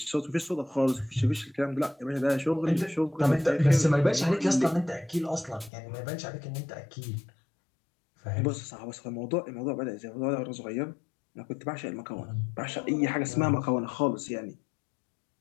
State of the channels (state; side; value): drops out; right; at 5.7 s